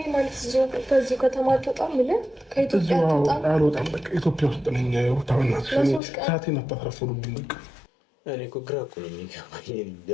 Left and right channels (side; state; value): right; drops out; at 6.0 s